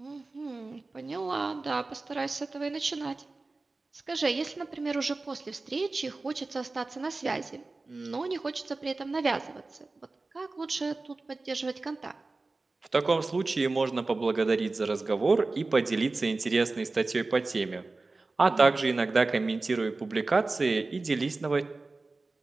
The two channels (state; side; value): quieter; left; 3.5 dB